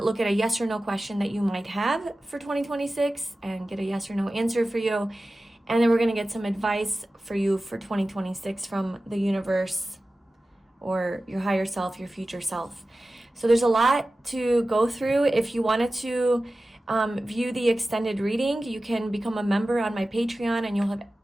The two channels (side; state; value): both; normal; correlation 0.95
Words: look at a yes or no question that you might have for 2026 and get a yes or no answer for you. And then we're going to get some advice for you for 2026 from the universe or your higher self, your future self. So there's a lot to go through. If you wanted to view the extended reading, you can become a member on my Patreon and you'll have